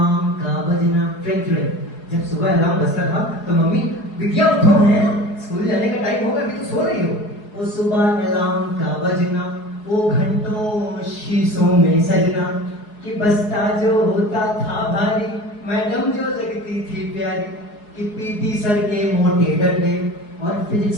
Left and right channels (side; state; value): right; late; 4.7 ms